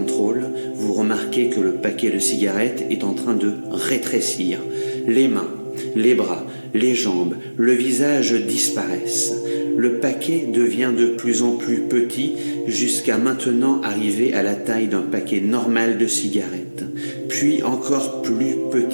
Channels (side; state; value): both; inverted; correlation -1.00